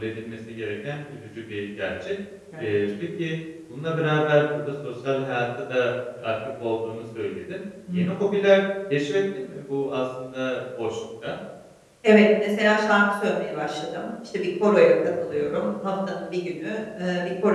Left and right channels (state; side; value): identical; both; correlation 1.00